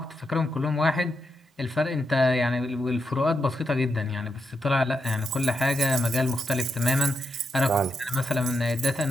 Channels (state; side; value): normal; both; correlation 0.83